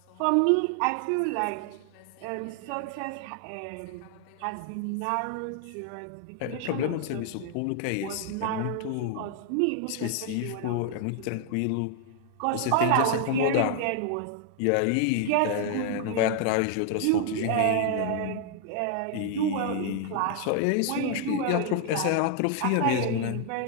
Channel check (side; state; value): both; different; correlation 0.00